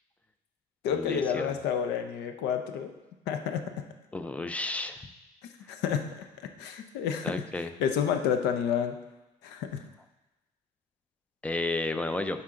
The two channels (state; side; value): quieter; right; 6.0 dB